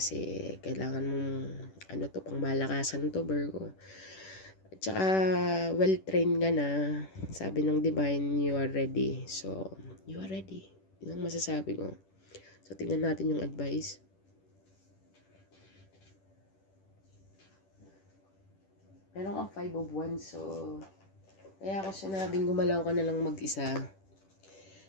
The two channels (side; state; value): right; late; 10 ms